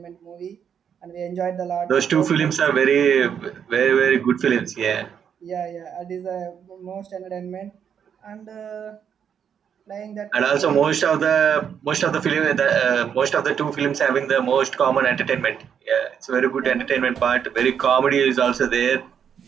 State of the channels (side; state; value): left; quieter; 7.9 dB